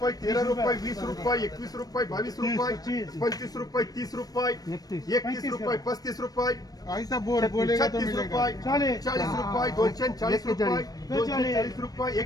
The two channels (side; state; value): right; late; 0.18 ms